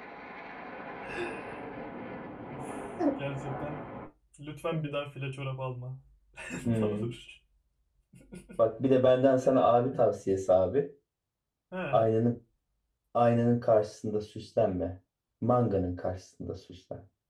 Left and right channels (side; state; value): both; identical; correlation 1.00